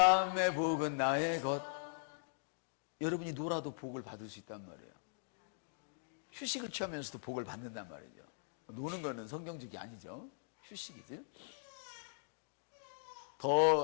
복은 나의 것. 여러분이 놀아도 복을 받을 수 있단 말이에요. 휴식을 취하면서도 복을 받는단 말이죠. 노는 거는 성경적이 아니죠. 휴식이죠.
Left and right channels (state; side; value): silent; right; digital silence